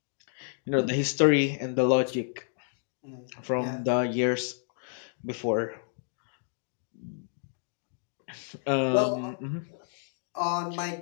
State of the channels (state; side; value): silent; right; digital silence